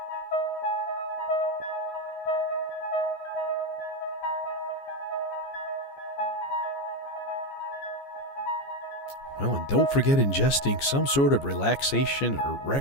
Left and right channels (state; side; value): late; right; 14 ms